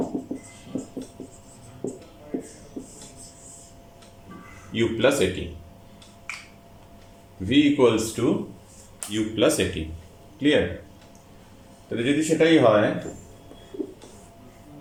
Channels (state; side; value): identical; both; correlation 1.00